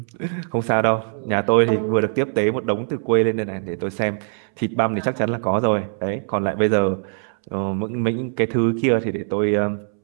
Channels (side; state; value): left; silent; 62 dB below the other